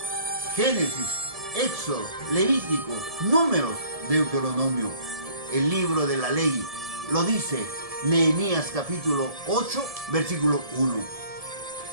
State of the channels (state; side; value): late; left; 1.7 ms